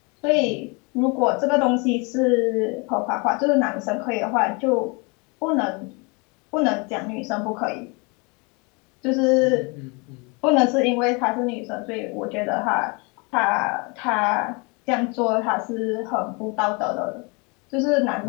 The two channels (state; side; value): quieter; right; 30.4 dB